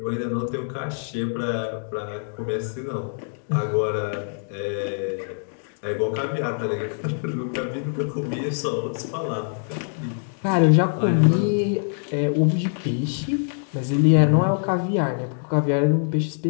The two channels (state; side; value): silent; right; digital silence